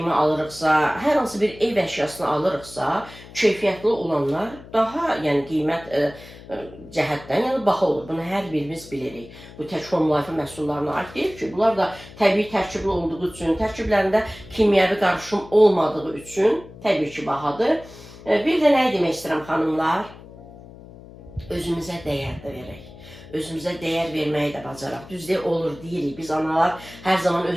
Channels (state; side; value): noise; left; hum, 18 dB below the sound